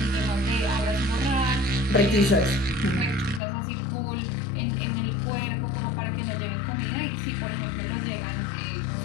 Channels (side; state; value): right; drops out; at 3.4 s